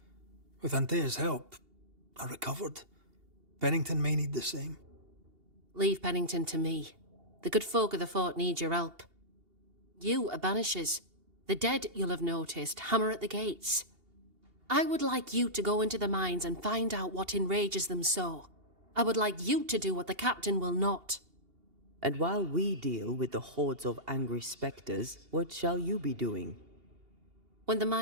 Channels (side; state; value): left; late; 2.8 ms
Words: With Antea's help, I recovered. Pennington may need the same. Leave Pennington to me. The good folk of the fort need your help. You are Banishers. The dead, you'll have noticed, hammer at the gates. I would like you to go into the mines and find out what enrages them so. I would like you to do what the captain will not. And while we deal with the hordes of angry spectres, what shall you be doing? When the